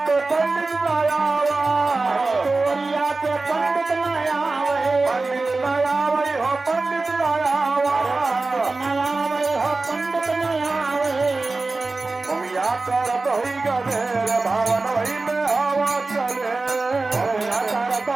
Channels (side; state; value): left; quieter; 3.5 dB